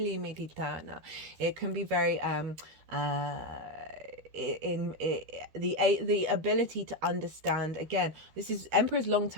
can be very the ability to understand. Again, this is Emperor's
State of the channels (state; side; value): late; left; 13 ms